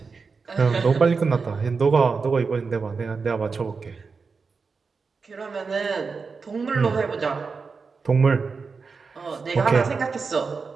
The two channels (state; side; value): quieter; left; 4.8 dB